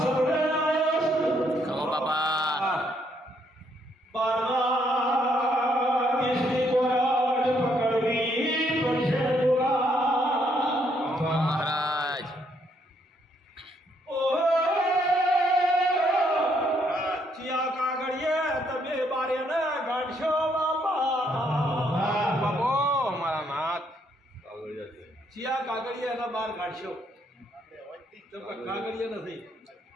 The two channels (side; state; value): both; normal; correlation 0.71